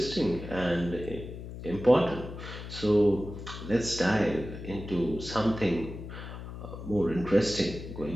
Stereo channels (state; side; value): noise; left; hum, 10 dB below the sound